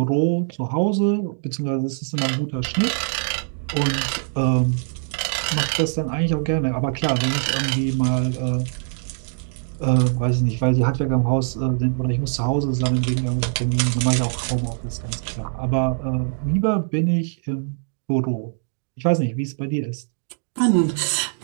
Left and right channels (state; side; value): silent; left; digital silence